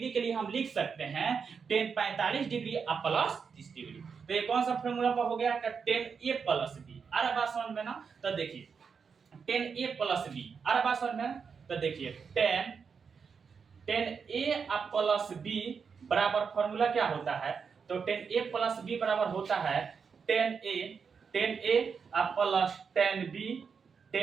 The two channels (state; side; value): quieter; left; 6.0 dB